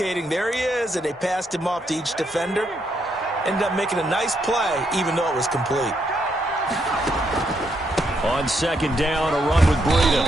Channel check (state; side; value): normal; both; correlation 0.77